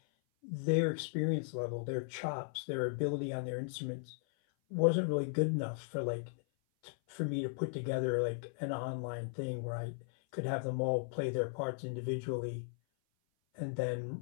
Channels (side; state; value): right; silent; 53 dB below the other